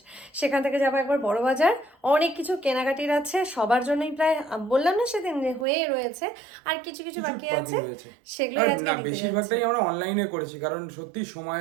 সেখান থেকে যাবো একবার বড় বাজার। অনেক কিছু কেনাকাটির আছে সবার জন্যই, প্রায় বললাম না সেদিন হয়ে রয়েছে, আর কিছু কিছু বাকি আছে, সেগুলোই আজকে নিতে যাচ্ছি। বেশিরভাগটাই আমরা অনলাইনে করেছি কারণ সত্যি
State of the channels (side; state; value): left; drops out; at 5.7 s